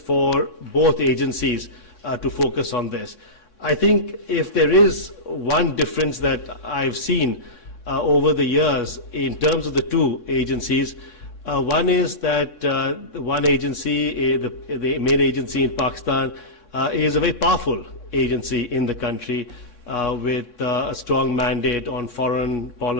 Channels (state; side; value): late; right; 3.6 ms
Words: both agencies to focus on this. I think if there is one difference that I've seen over the years in terms of the two agencies, one is that one agency, the main agency in Pakistan, is a very powerful agency in the country with a strong mandate on foreign